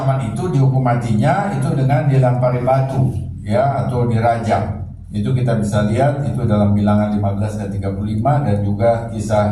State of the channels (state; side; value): identical; both; correlation 1.00